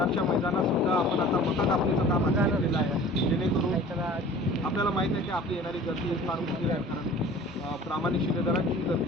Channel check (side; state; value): both; normal; correlation 0.45